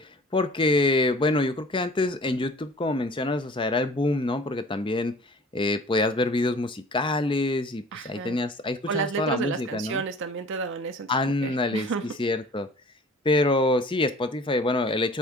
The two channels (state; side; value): normal; both; correlation 0.47